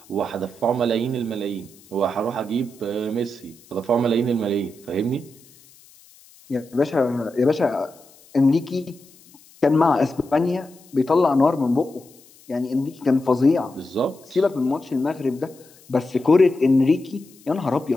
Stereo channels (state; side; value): noise; left; hiss, 26 dB below the sound